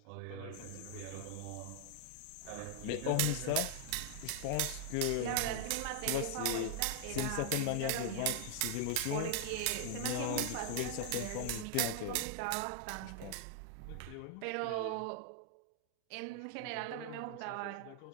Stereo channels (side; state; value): both; different; correlation 0.00